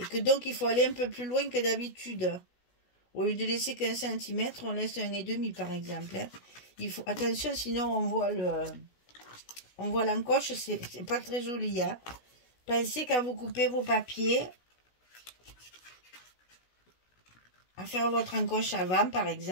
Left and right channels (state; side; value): late; right; 16 ms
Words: que donc il faut aller un peu plus loin que d'habitude. Au lieu de laisser qu'1 cm, on laisse 1,5 par exemple. Hein. Il faut attention, sinon on voit l'encoche, c'est pas très joli. Hein. Pensez quand vous coupez vos papiers à faire votre encoche avant par